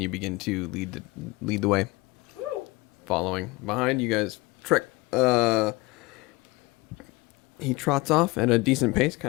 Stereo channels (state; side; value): quieter; right; 23.2 dB